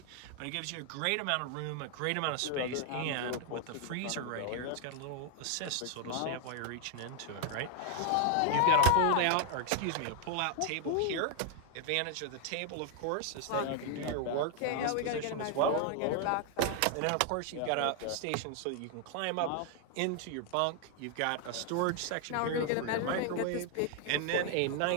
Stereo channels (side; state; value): both; different; correlation 0.00